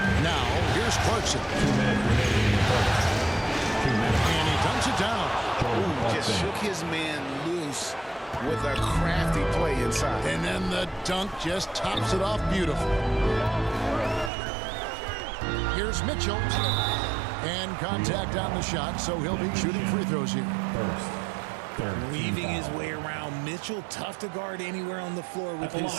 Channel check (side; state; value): left; drops out; at 14.3 s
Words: Now, here's Clarkson. 2 minutes remaining in the first. 2 minutes. And he dunks it down. Just shook his man loose with a crafty play inside. And then the dunk just tops it off beautiful. Here's Mitchell. And contact on the shot, so he'll be shooting free throws here. Weaving his way around. Mitchell, tough to guard anywhere on the floor with his